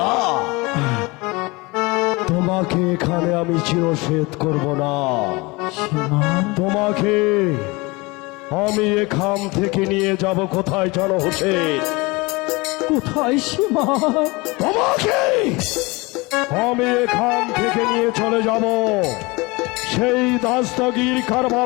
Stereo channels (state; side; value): quieter; right; 24.6 dB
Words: তোমাকে এখানে আমি চিরসেদ করব না। সীমা তোমাকে আমি এখান থেকে নিয়ে যাব কোথায় জানো হোসেন? কোথায় সীমা? তোমাকে আমি এখান থেকে নিয়ে চলে যাব সেই দাস্তগীর